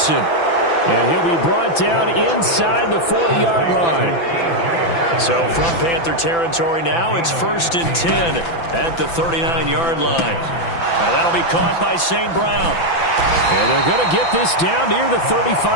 And he'll be brought down inside the 40-yard line. So from Panther territory now, it's 1st and 10 at the 39-yard line. Now that'll be caught by St. Brown. And they're going to get this down near the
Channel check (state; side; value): late; right; 5.9 ms